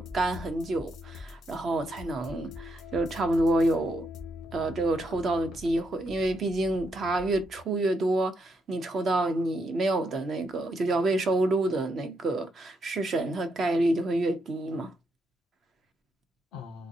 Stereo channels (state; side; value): normal; both; correlation 0.79